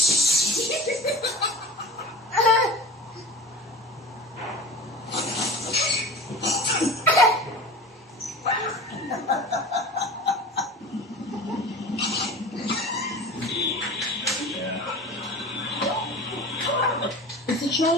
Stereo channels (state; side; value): normal; both; correlation 0.35